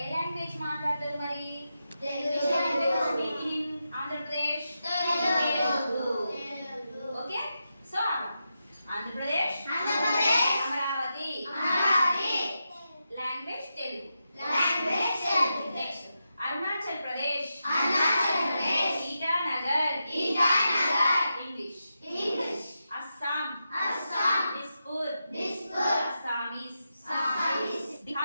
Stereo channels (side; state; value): both; inverted; correlation -0.88